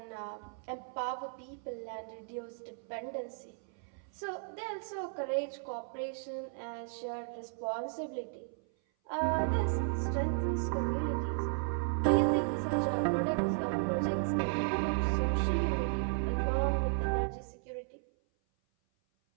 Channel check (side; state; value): left; silent; 55 dB below the other